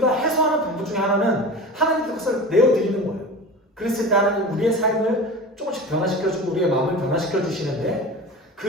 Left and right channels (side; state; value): both; normal; correlation 0.33